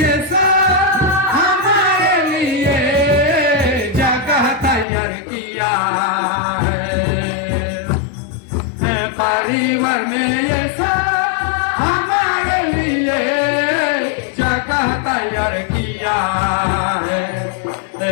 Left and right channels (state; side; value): drops out; right; at 4.9 s